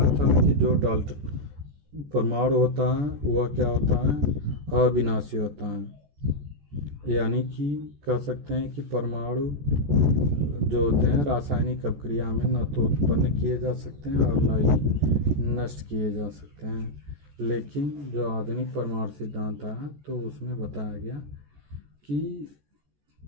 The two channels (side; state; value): left; late; 14 ms